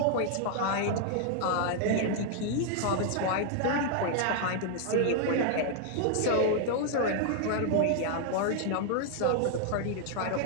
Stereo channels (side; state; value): both; different; correlation 0.00